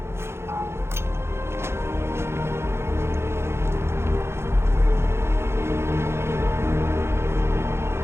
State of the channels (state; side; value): late; left; 0.12 ms